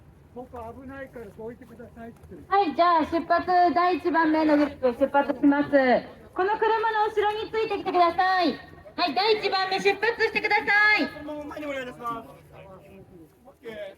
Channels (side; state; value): both; identical; correlation 1.00